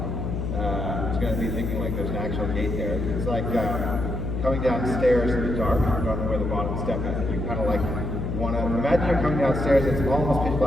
He's going to be thinking like there's an actual gate there. It's like coming downstairs in the dark, you don't know where the bottom step is, and you kind of like want to imagine you're coming downstairs, it's almost pitch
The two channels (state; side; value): noise; left; hum, 3 dB below the sound